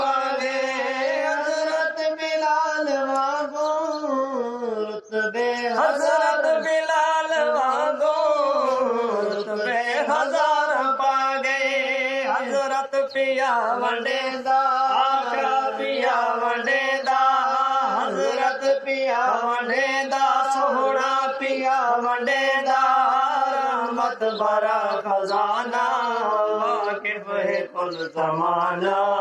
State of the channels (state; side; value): identical; both; correlation 1.00